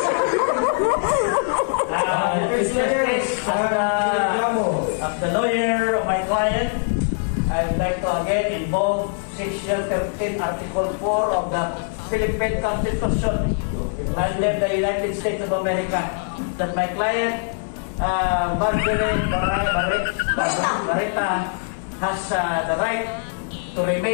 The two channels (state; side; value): silent; right; digital silence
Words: as the lawyer of my client, I would like to again invoke Section 13, Article 4 of the Philippine Constitution under the United States of America that my client, Marjorie Barreta, has the right to